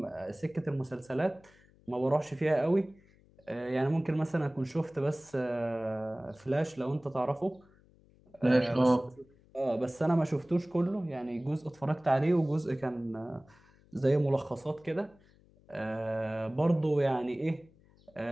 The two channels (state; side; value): noise; left; hum, 29 dB below the sound